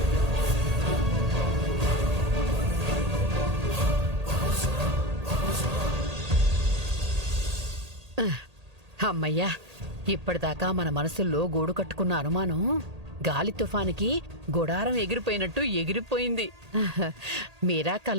అమ్మయ్యా, ఇప్పటిదాకా మన మనసుల్లో గూడు కట్టుకున్న అనుమానం గాలి తుఫానికి గుడారం ఎగిరిపోయినట్టు ఎగిరిపోయింది. మీరా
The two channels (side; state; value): left; late; 1.8 ms